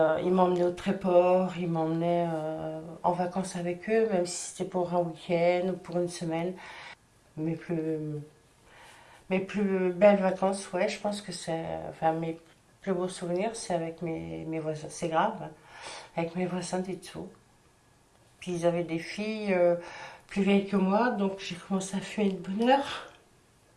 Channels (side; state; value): both; identical; correlation 1.00